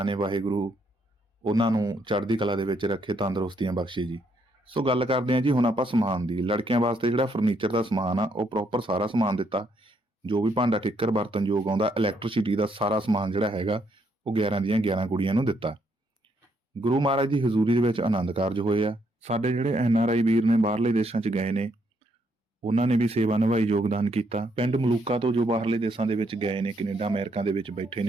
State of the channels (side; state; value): both; normal; correlation 0.73